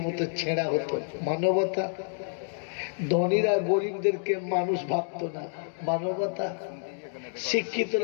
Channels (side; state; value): right; silent; 56 dB below the other